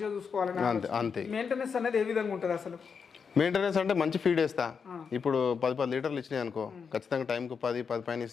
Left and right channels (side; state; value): right; quieter; 6.0 dB